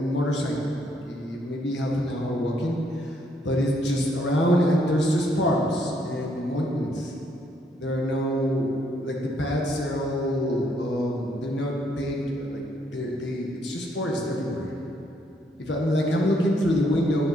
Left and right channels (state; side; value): normal; both; correlation 0.71